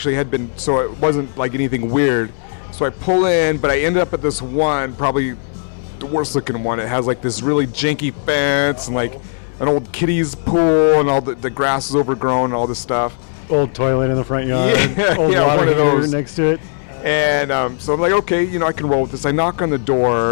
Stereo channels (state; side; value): silent; right; digital silence